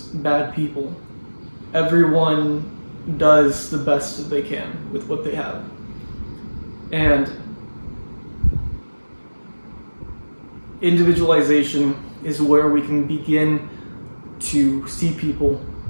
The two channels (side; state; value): both; inverted; correlation -1.00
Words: bad people. Everyone does the best that they can with what they have. And individualization is where we can begin to see people